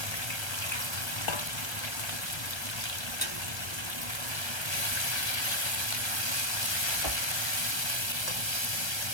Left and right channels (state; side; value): late; right; 1.3 ms